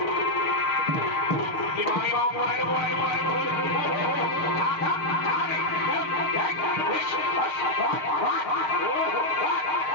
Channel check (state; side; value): late; right; 6.5 ms